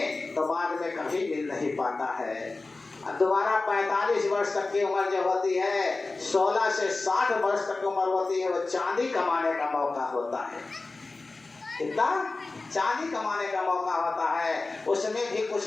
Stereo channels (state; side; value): quieter; right; 3.5 dB